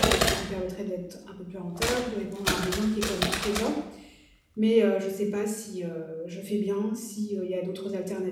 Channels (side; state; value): both; identical; correlation 1.00